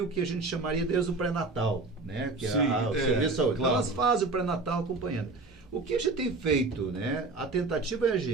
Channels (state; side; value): quieter; left; 3.6 dB